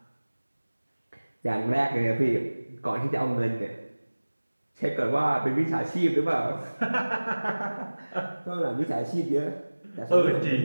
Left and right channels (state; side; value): inverted; both; correlation -1.00